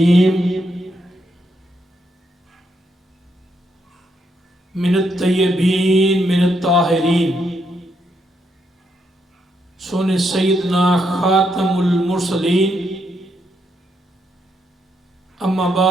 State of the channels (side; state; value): both; normal; correlation 0.78